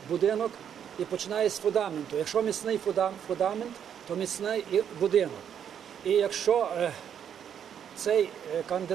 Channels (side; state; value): left; quieter; 8.7 dB